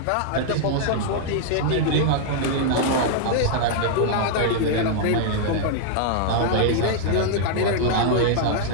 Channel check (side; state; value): both; different; correlation -0.01